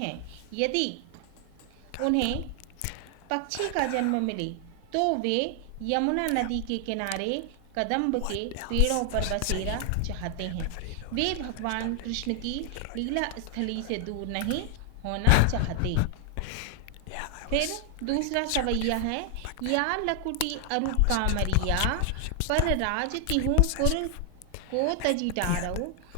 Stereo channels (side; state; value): both; different; correlation 0.00